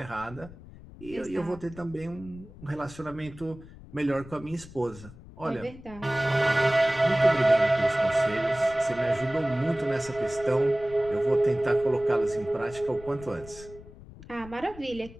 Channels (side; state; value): left; noise; rumble, 18 dB below the sound